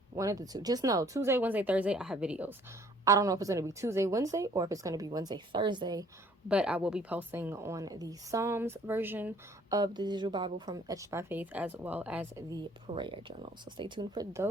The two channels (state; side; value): normal; both; correlation 0.58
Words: One of the two. Just know Tuesday, Wednesday, Thursday, I have videos. I don't know if it's going to be Tuesday, Wednesday, or if it's going to be Wednesday, Thursday, but I will be posting on the Psalms version of the Digital Bible from Etched by Faith, as well as the prayer journal. So stay tuned for